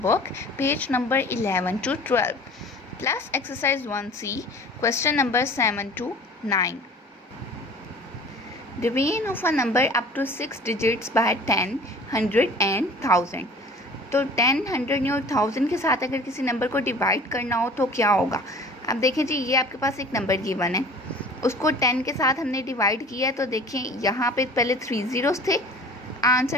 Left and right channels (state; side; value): normal; both; correlation 0.44